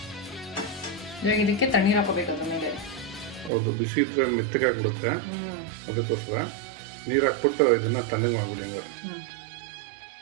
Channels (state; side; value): drops out; left; at 3.5 s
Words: ಇವಾಗ ಇದಕ್ಕೆ ತಣ್ಣೀರು ಹಾಕೋಬೇಕು ಅದ್ರ ಮೇಲೆ. ಹೌದು, ಬಿಸಿ ಇದ್ರೆ ಮೆತ್ತಗಾಗ್ಬಿಡುತ್ತೆ. ಅದಕ್ಕೋಸ್ಕರ ನೀರು ಹಾಕ್ಬಿಟ್ಟು ಇದನ್ನ ತಣ್ಣಗೆ ಮಾಡ್ಬಿಡಿ. ಹಂಗಾರೆ